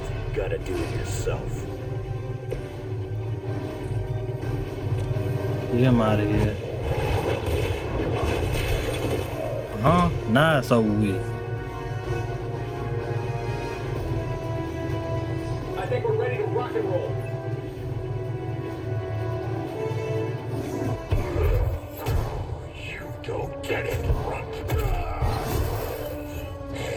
gotta do it yourself. Get him out of here. Huh? Nah, it's over with. I think we're ready to rock and roll. You don't get it, Runt.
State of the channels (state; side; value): identical; both; correlation 1.00